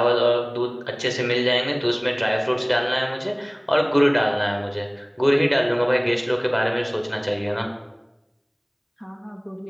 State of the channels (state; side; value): identical; both; correlation 1.00